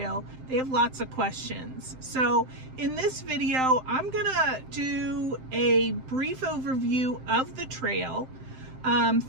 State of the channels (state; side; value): late; left; 7.7 ms